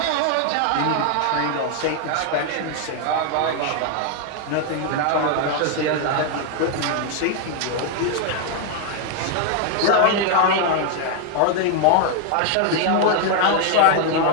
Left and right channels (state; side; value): different; both; correlation 0.00